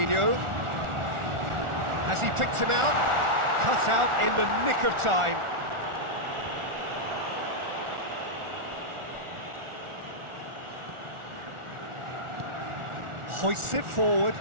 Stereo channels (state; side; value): late; left; 1.4 ms